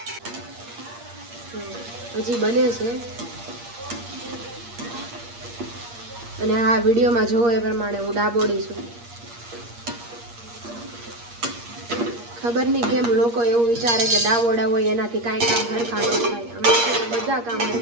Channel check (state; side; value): late; left; 8.5 ms